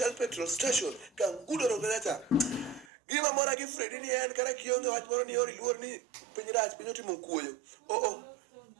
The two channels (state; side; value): drops out; left; at 2.9 s